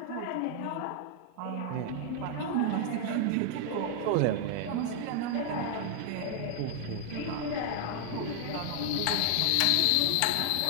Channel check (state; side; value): different; both; correlation 0.00